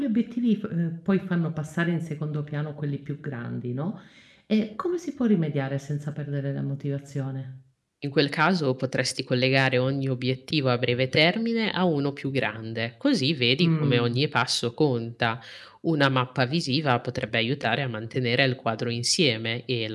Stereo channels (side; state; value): both; identical; correlation 1.00